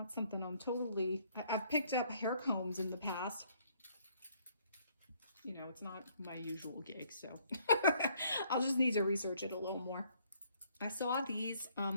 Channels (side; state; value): both; inverted; correlation -0.65